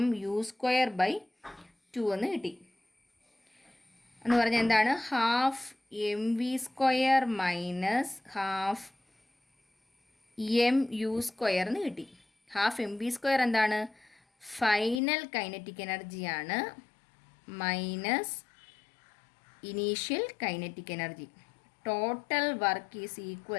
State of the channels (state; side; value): drops out; right; at 15.0 s